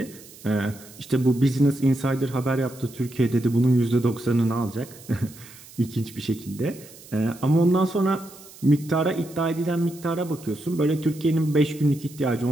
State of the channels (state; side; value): noise; right; hiss, 20 dB below the sound